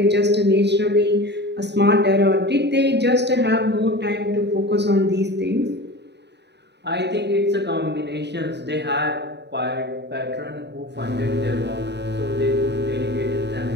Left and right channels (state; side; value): late; left; 0.50 ms